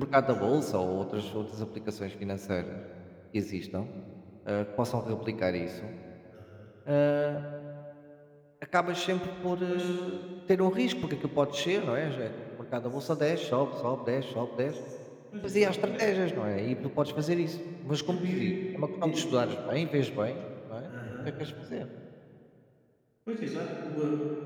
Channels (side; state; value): both; identical; correlation 1.00